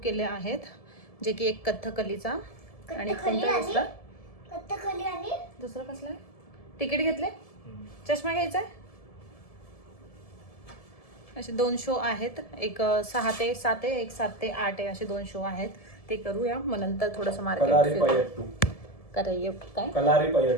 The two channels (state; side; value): late; right; 1.7 ms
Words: केले आहेत, जे की एक कथ्थकलीचा आणि कोणता दुसरा कथ्थकली आणि दुसरा कसला आहे. तिकीट घेतले. चष्मा घ्यायचा आहे. असे 2 शो आहेत. एक 6 ते 7 आहे, एक 7 ते 8 आहे. असे 2 शो आहेत. ते करूया. मग नंतर थोडंसं मार्केट काय